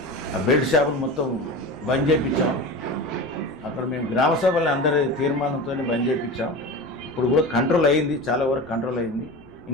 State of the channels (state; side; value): noise; left; rumble, 26 dB below the sound